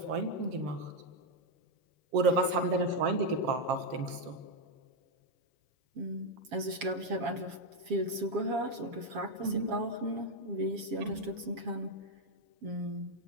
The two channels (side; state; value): left; late; 7.2 ms